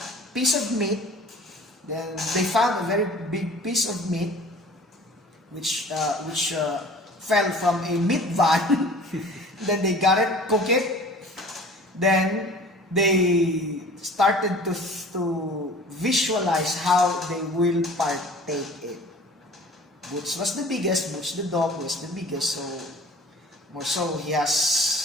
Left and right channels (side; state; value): both; normal; correlation 0.46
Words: piece of meat. Then they found a very big piece of meat which fell from a meat van. Then they got it, cook it. Then they started to visualize how they will partake it. Boots was the biggest. Boots the dog was the biggest. So more so, he